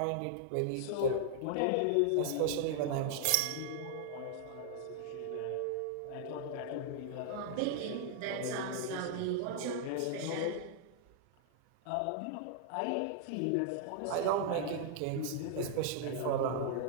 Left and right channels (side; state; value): both; different; correlation -0.01